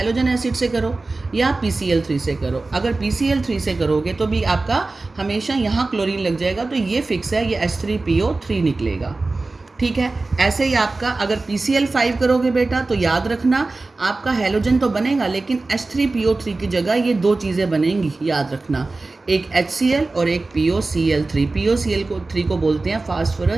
एसिड से करो, या PCl3 से करो। अगर PCl3 से करोगे तो भी आपका हमेशा यहाँ क्लोरीन लग जाएगा, तो ये फिक्स है, ये H3PO3 निकलेगा, ठीक है। ऐसे ही आपका अगर PCl5 करोगे बेटा तो याद रखना आपका हैलोजन तो बनेगा, लेकिन H3PO3 की जगह ये दो चीज़ें बनेंगी, याद रखना, एक HCl और एक POCl3। POCl3 को बोलते हैं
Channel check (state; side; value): quieter; left; 3.4 dB